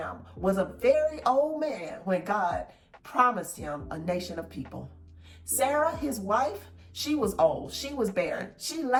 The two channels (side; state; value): both; identical; correlation 1.00